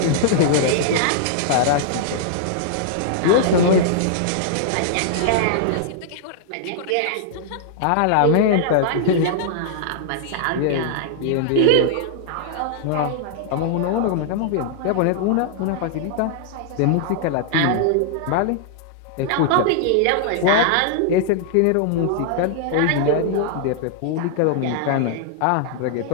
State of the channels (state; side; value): different; both; correlation -0.01